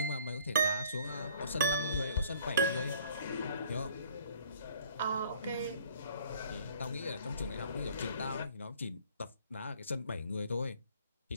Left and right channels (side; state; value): both; inverted; correlation -0.57